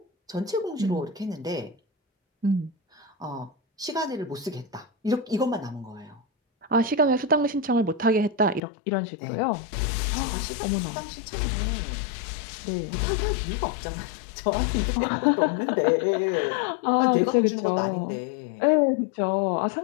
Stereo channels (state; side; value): drops out; right; at 8.6 s